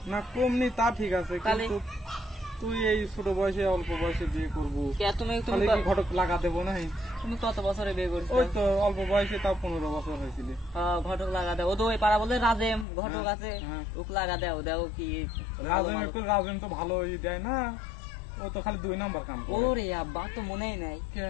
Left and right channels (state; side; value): drops out; right; at 12.9 s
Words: না কম নেই তা ঠিক আছে, কিন্তু তুই এই ছোট বয়সে অল্প বয়সে বিয়ে করবো, তুমি ঘটক লাগা দেবো না? তুমি কত বছরে বিয়ে করছো? ওই তো অল্প বয়সে, তাও 15 বছর হয়েছিল। ঘটক লাগা দেও, ও তো ওই পাড়া বলে রাজেম ঘটক আছে, ওক লাগা দেও কি? রাজেন তো ভালোই দেয় না, ও তো খালি 2 নাম্বার কাম করে। ওরে আব্বা তো মনেই নাই।